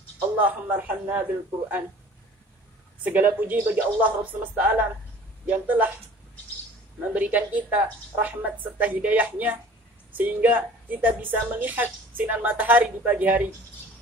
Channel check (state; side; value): normal; both; correlation 0.47